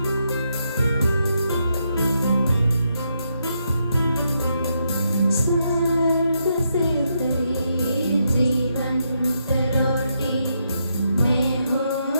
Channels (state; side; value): inverted; both; correlation -0.80